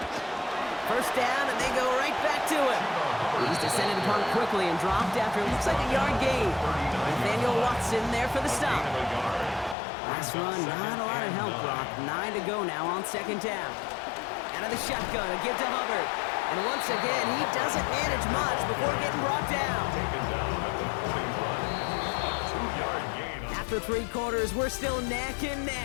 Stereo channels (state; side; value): drops out; right; at 9.8 s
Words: First down, and they go right back to it. He's descended upon quickly and dropped after it looks like a yard gain. Nathaniel Watson there for the stop. Last run, not a lot of help, Brock. 9 to go now on 2nd down. Out of the shotgun, a give to Hubbard. And once again, he doesn't manage much before getting brought down. After 3 quarters, we're still neck and